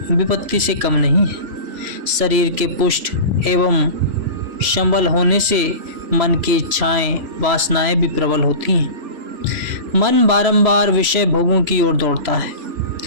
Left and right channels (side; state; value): left; late; 3.0 ms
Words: विपत्ति से कम नहीं है। शरीर के पुष्ट एवं संबल होने से मन की इच्छाएं वासनाएं भी प्रबल होती हैं। मन बारंबार विषय भोगों की ओर दौड़ता है।